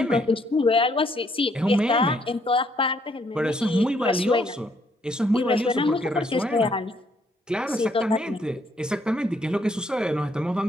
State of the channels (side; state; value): both; normal; correlation 0.69